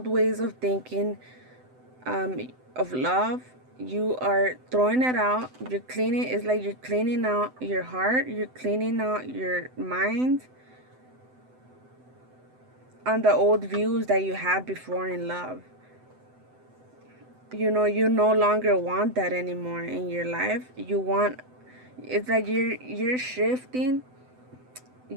ways of thinking, of love. You are throwing it out. You're cleaning. It's like you're cleaning out your heart. You're cleaning out your mind on the old views that you had before in love. You no longer want that anymore in your life. It's like you're shifting.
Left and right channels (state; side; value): late; left; 7.9 ms